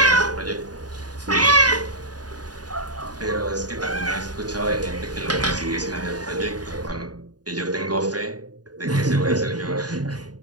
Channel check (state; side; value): late; left; 0.68 ms